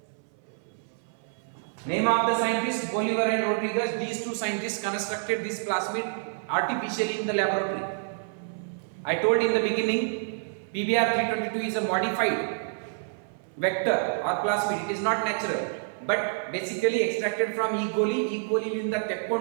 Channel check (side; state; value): left; silent; 58 dB below the other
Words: Name of the scientists Bolivar and Rodriguez. These two scientists constructed this plasmid artificially in the laboratory. I told in the beginning, PBr 322 is a modified vector or plasmid. It is not natural, but basically extracted from E. coli. E. coli ಲಿಂದ